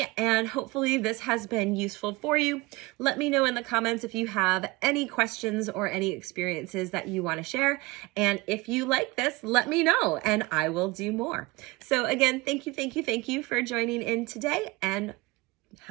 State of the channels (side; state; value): left; quieter; 22.6 dB